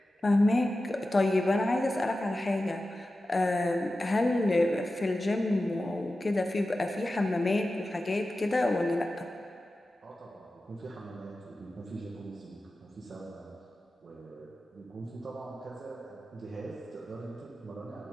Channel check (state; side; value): normal; both; correlation 0.94